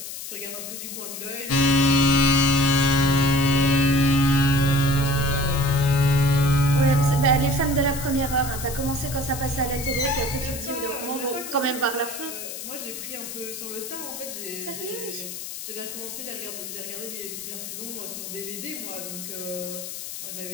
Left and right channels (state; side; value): noise; left; hiss, 9 dB below the sound